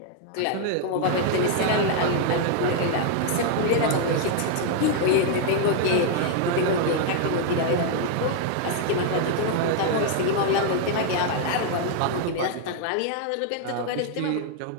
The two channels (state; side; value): different; both; correlation 0.00